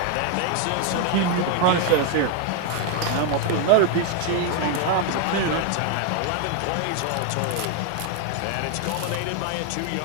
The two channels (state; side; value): different; both; correlation 0.01